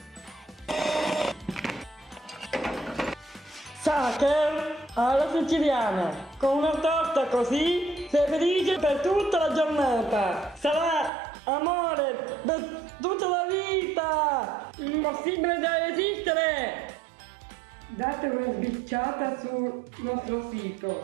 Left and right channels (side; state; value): left; drops out; at 11.1 s